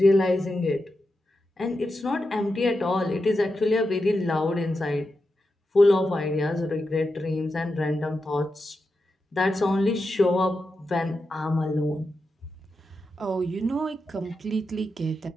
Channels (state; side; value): normal; both; correlation 0.88